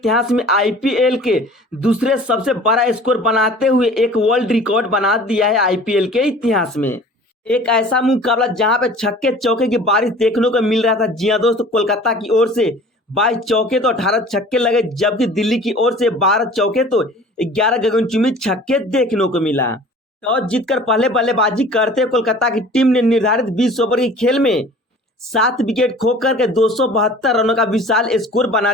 में आईपीएल के दूसरे सबसे बड़ा स्कोर बनाते हुए एक वर्ल्ड रिकॉर्ड बना दिया है आईपीएल के इतिहास में। एक ऐसा मुकाबला जहां पे छक्के चौके की बारिश देखने को मिल रहा था। जी हाँ दोस्तों, कोलकाता की ओर से 22 चौके तो 18 छक्के लगे, जबकि दिल्ली की ओर से 12 चौके तो 11 गगनचुंबी छक्के देखने को मिला। टॉस जीतकर पहले बल्लेबाजी करते हुए कोलकाता की टीम ने निर्धारित 20 ओवर के खेल में 7 विकेट खोकर के 272 रनों का विशाल स्कोर बना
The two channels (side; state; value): both; normal; correlation 0.45